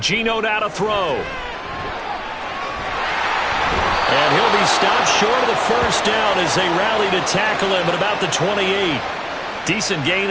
Geno now to throw. And he'll be stopped short of the first down as they rally to tackle him at about the 28. Decent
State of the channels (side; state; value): both; identical; correlation 1.00